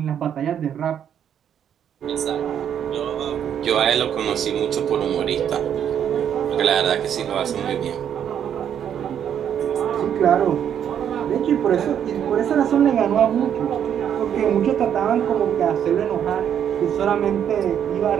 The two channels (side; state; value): left; quieter; 9.1 dB